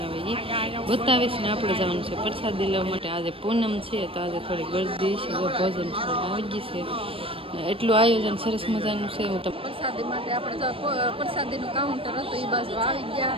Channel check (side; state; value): left; late; 0.27 ms